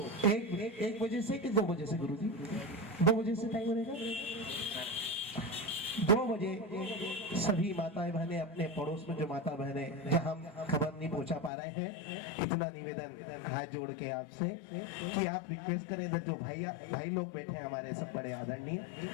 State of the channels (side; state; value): right; drops out; at 11.5 s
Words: एक बजे से कि 2 बजे से, गुरु जी 2 बजे से टाइम रहेगा, 2 बजे सभी माताएं बहनें अपने पड़ोस में जो माता बहनें जहां खबर नहीं पहुंचा पा रहे हैं, इतना निवेदन हाथ जोड़ के आपसे कि आप रिक्वेस्ट करें। इधर जो भाई लोग बैठे हैं हमारे सब बड़े आदरणीय,